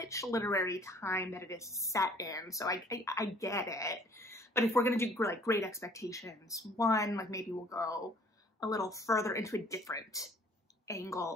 literary time that it is set in, so I get it. But if we're gonna do like Great Expectations 1, like maybe we'll go a little further into a different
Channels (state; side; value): normal; both; correlation 0.55